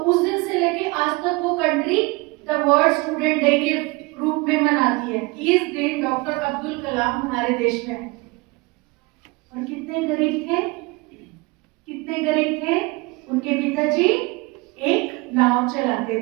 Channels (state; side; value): quieter; left; 25.1 dB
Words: दिन से लेके आज तक वो country the world student day के रूप में मनाती है। इस दिन डॉक्टर अब्दुल कलाम हमारे देश में आए। और कितने गरीब थे, कितने गरीब थे। उनके पिताजी एक नाव चलाते